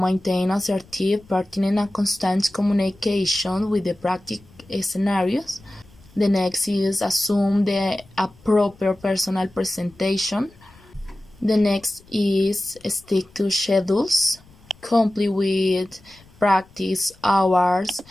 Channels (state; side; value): noise; left; rumble, 27 dB below the sound